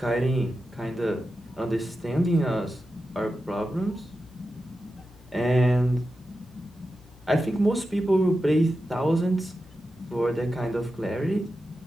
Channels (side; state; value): both; normal; correlation 0.91